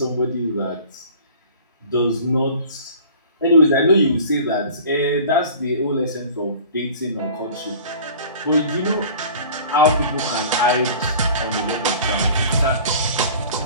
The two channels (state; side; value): inverted; both; correlation -0.44